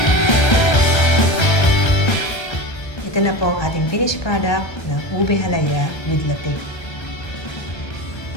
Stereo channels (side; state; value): right; late; 1.3 ms